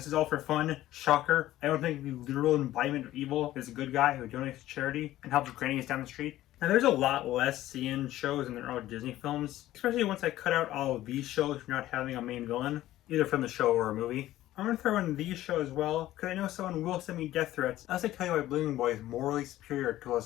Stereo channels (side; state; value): right; quieter; 14.7 dB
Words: is all for fun. Shocker, I don't think the literal embodiment of evil is a good guy who donates to charity and helps grannies down the street. Now there's a lot less CN shows in their own Disney films, especially once I cut out all of these shows for not having a main villain, either from the show or a movie. I'm going to throw in these shows as well, because I know someone will send me death threats unless I tell you why Blooming Boy is morally superior to